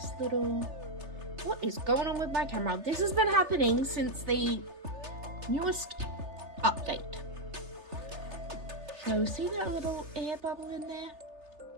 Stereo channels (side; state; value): left; late; 3.3 ms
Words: little, what is going on with my camera? This has been happening since the newest update. So see that little air bubble in there?